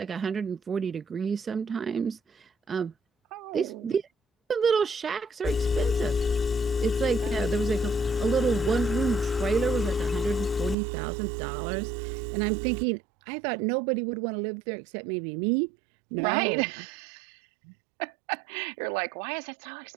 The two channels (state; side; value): drops out; left; at 10.8 s